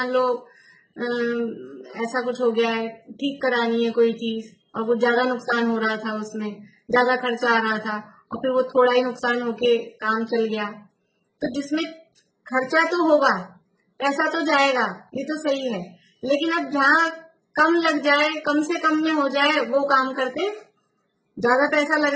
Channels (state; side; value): identical; both; correlation 1.00